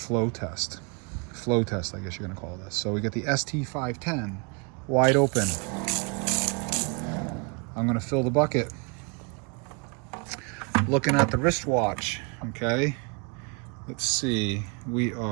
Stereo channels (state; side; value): quieter; left; 33.4 dB